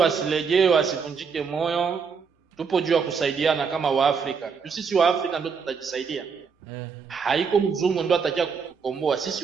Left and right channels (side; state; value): left; quieter; 5.8 dB